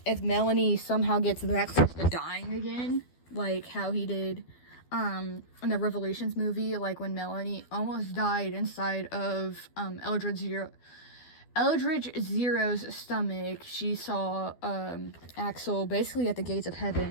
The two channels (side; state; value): right; late; 12 ms